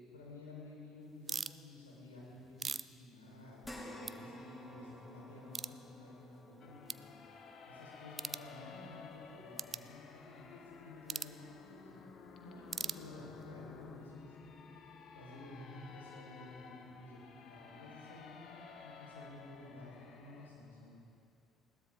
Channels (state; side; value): normal; both; correlation 0.69